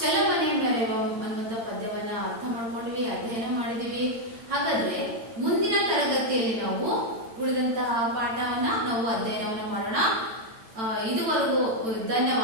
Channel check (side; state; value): left; late; 8.9 ms